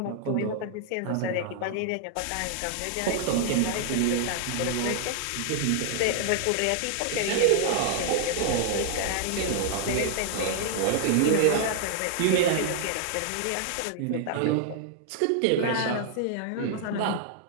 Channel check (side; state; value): both; different; correlation 0.00